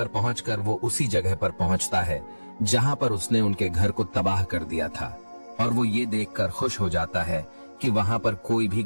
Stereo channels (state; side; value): inverted; both; correlation -1.00